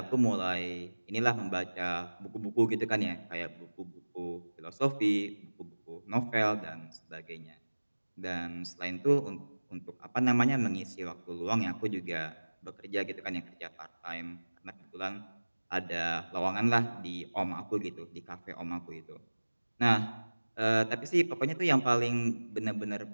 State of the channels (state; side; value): inverted; both; correlation -1.00